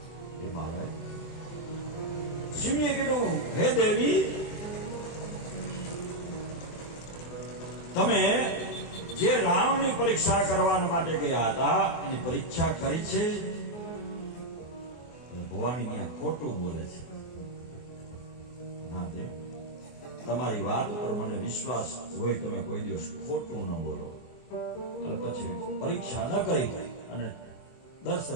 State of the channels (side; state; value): right; late; 24 ms